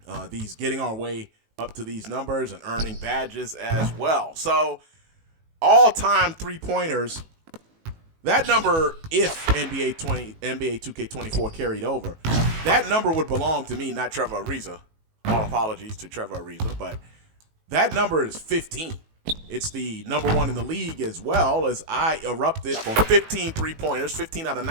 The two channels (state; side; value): late; left; 18 ms